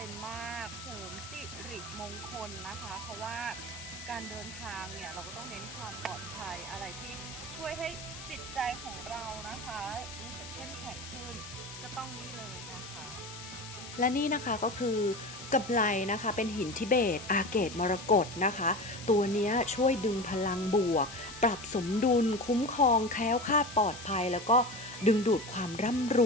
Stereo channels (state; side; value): noise; left; hiss, 13 dB below the sound